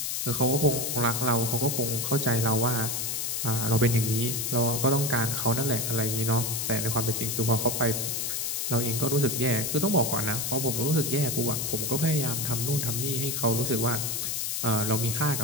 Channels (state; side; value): noise; left; hiss, 1 dB below the sound